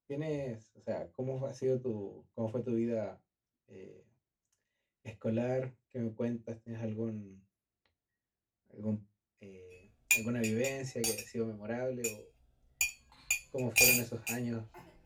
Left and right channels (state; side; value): identical; both; correlation 1.00